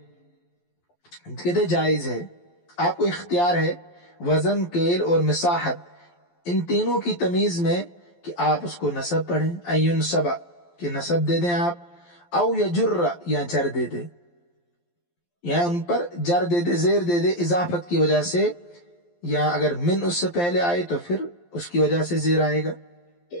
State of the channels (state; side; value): late; right; 12 ms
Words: کہتے جائز ہے، آپ کو اختیار ہے وزن، کیل اور مساحت ان تینوں کی تمیز میں کہ آپ اس کو نصب پڑھیں، ان ينصب کہ نصب دے دیں آپ، او یجر یا جر دے دیں، یا ان پر جر دے دے، زیر دے دے اضافت کی وجہ سے، یا اگر من اس سے پہلے آئے تو پھر اس کی وجہ سے زیر آئے گا۔